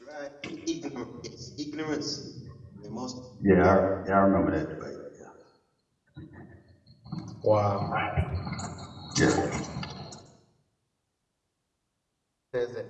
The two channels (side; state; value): both; identical; correlation 1.00